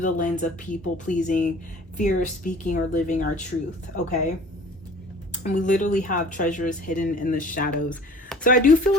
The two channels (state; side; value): normal; both; correlation 0.47